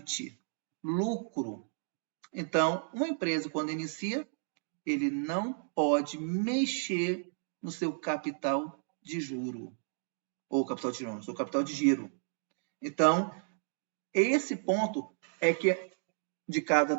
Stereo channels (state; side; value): silent; left; digital silence